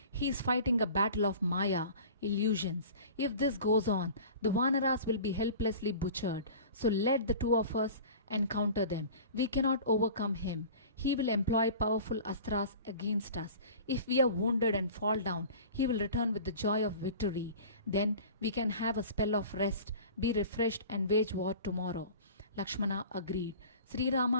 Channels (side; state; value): both; inverted; correlation -0.40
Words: He is fighting a battle of Maya, illusions. If this goes on, the Vanaras will be helplessly butchered. So let the two of us encounter them. We cannot overcome him. He will employ powerful astras against us. If we are wounded and fall down, he will return with the joy of victory. Then we can have a spell of rest, be refreshed, and wage war tomorrow. Lakshmana agreed. Sri Rama